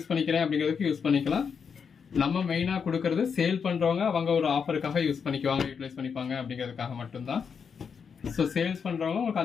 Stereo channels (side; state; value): right; quieter; 6.4 dB